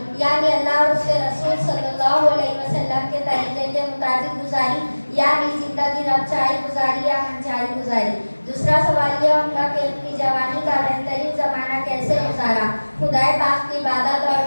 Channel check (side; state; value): both; inverted; correlation -1.00